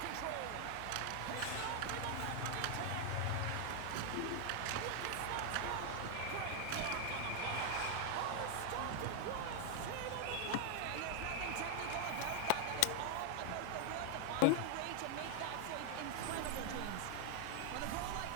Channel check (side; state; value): both; different; correlation 0.00